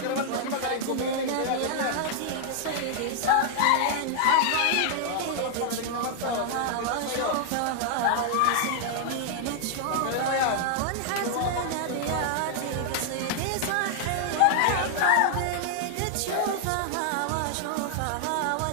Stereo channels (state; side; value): different; both; correlation 0.00